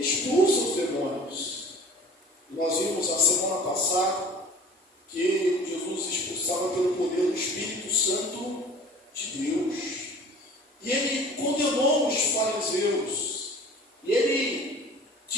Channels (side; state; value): both; normal; correlation 0.45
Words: expulsa os demônios. E nós vimos na semana passada que Jesus expulsava pelo poder do Espírito Santo de Deus. E ele condenou os fariseus, e ele